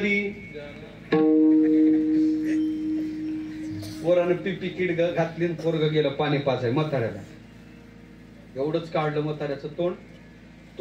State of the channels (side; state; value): both; identical; correlation 1.00